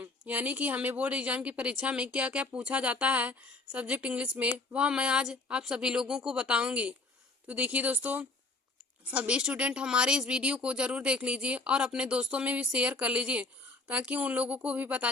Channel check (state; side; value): quieter; right; 3.3 dB